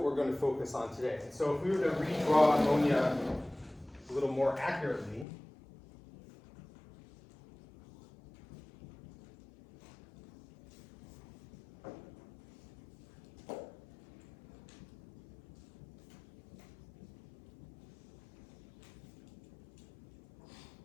we're going to focus on today. So if we were to redraw ammonia a little more accurately,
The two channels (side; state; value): right; drops out; at 5.2 s